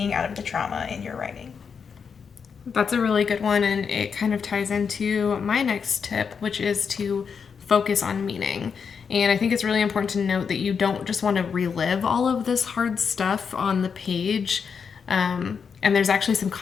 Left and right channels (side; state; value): right; quieter; 6.2 dB